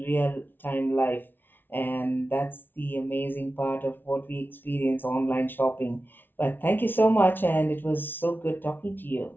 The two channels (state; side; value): late; right; 0.098 ms